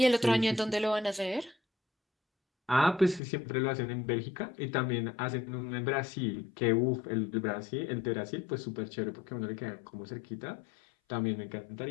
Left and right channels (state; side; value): drops out; right; at 3.2 s